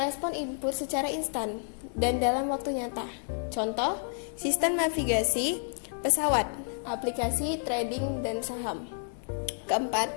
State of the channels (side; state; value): right; silent; 58 dB below the other